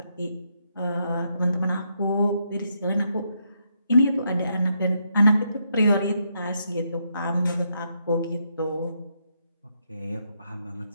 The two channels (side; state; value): both; inverted; correlation -0.78